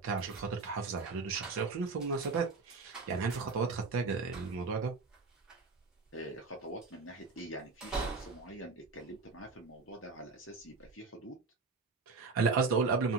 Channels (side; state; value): left; quieter; 4.3 dB